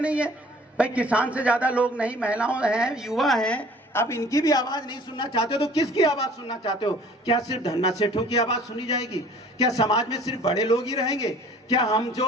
है भाई, किसान से ज्यादा लोग नहीं, महिलाओं हैं, युवा हैं। अब इनकी भी आवाज नहीं सुनना चाहते हो तो किसकी आवाज सुनना चाहते हो? क्या सिर्फ धन्ना सेठों की आवाज सुनी जाएगी? क्या समाज में सिर्फ बड़े लोग ही रहेंगे? क्या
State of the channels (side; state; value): both; normal; correlation 0.51